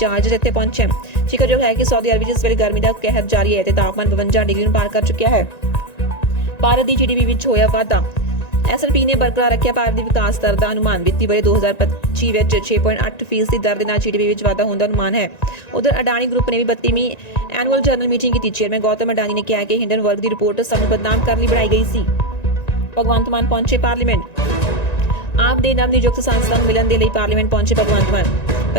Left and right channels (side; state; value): right; late; 1.9 ms